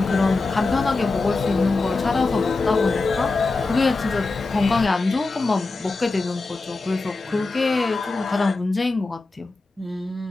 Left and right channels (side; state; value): right; quieter; 3.6 dB